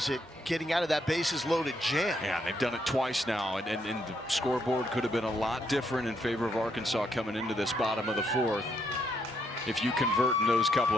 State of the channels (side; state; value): both; normal; correlation 0.75